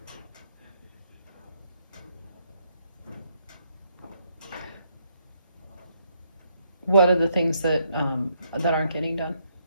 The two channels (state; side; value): inverted; both; correlation -0.74